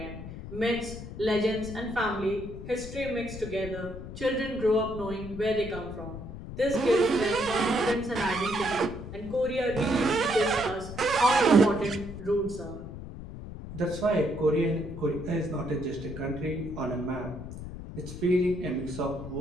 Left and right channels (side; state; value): left; noise; rumble, 10 dB below the sound